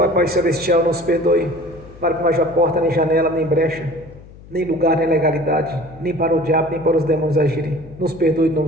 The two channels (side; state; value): left; noise; hum, 20 dB below the sound